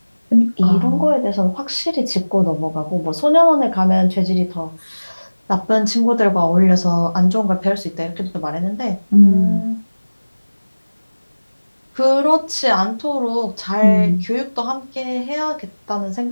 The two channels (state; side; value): inverted; both; correlation -1.00